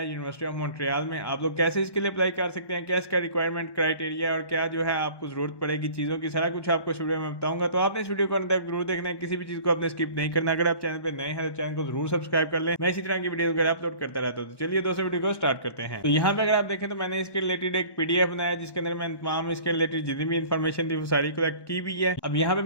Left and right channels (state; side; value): late; right; 1.1 ms